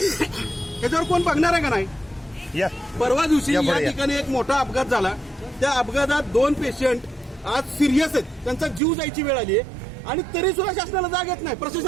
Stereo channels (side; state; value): left; drops out; at 8.8 s